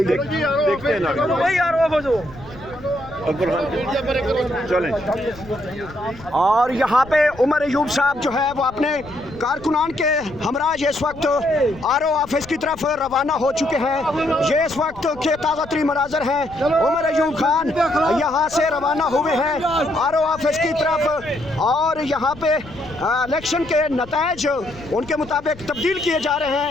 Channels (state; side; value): noise; left; rumble, 19 dB below the sound